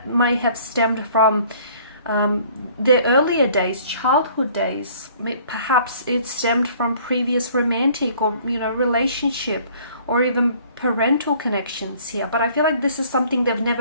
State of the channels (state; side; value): inverted; both; correlation -0.55